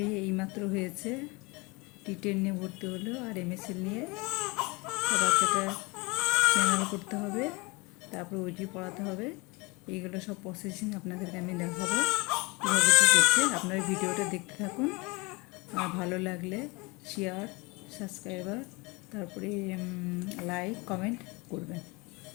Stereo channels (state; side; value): quieter; right; 26.1 dB